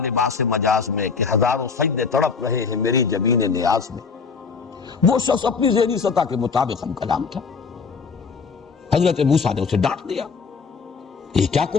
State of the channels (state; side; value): quieter; right; 5.3 dB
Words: مجاز میں کہ ہزاروں سجدے تڑپ رہے ہیں میری جبین نیاز میں، وہ شخص اپنی ذہنی سطح کے مطابق ہم کلام تھا۔ حضرت موسیٰ نے اسے ڈانٹ دیا، یہ کیا